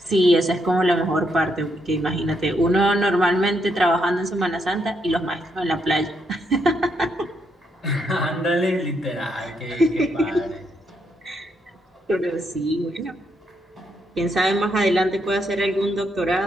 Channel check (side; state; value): both; normal; correlation 0.77